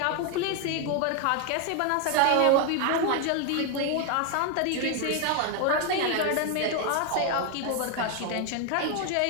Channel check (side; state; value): both; different; correlation 0.01